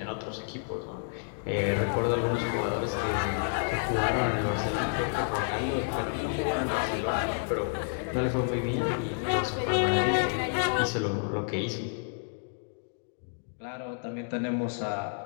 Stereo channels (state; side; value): silent; right; digital silence